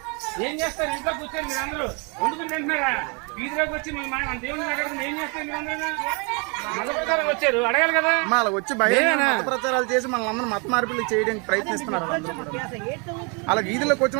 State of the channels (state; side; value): quieter; left; 33.2 dB